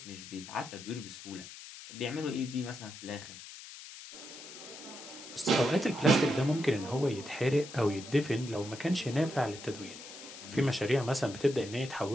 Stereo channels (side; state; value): left; noise; hiss, 14 dB below the sound